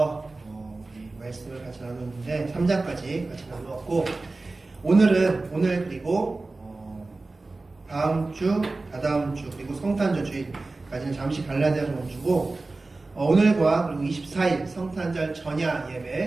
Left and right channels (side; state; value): left; quieter; 3.4 dB